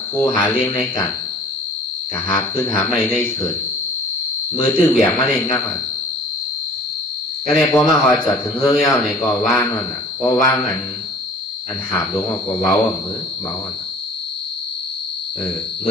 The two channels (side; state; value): both; normal; correlation 0.46